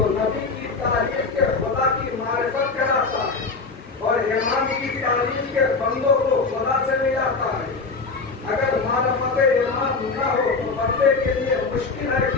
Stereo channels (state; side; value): quieter; right; 4.2 dB